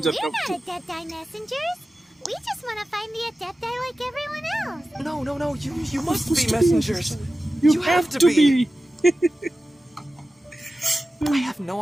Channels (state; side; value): normal; both; correlation 0.94